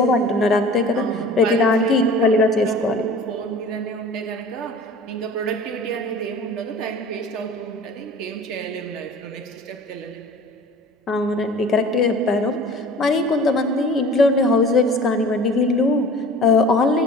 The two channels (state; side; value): normal; both; correlation 0.43